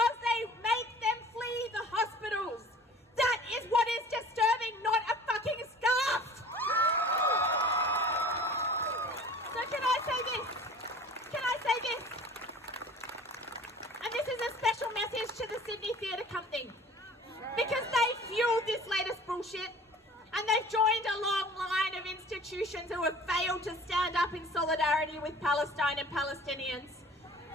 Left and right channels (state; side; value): normal; both; correlation 0.46